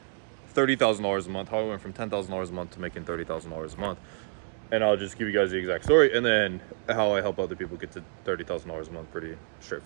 $30,000 a month, how I went from $10,000 a month to making $30,000 a month. And I'll just give you guys the exact story, and then how I help other people get to $30,000 a month. Pretty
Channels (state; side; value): silent; left; digital silence